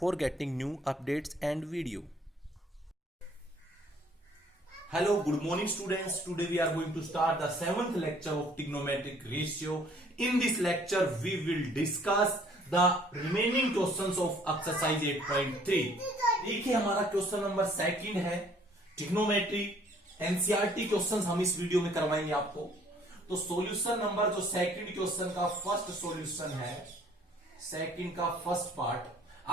getting new updates and video. Hello, good morning students. Today we are going to start the 7th lecture of trigonometric ratio. In this lecture we will discuss the remaining questions of exercise 8.3. देखिए हमारा question number second है trigonometry NCERT questions हम इस video में करवाएंगे आपको। तो solution number जो सेकंड क्वेश्चन का फर्स्ट सॉल्यूशन है, सेकंड का फर्स्ट पार्ट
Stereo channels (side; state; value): both; normal; correlation 0.59